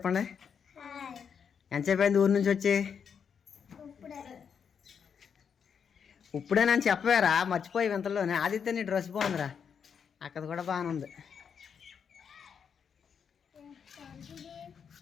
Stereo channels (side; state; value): right; quieter; 7.0 dB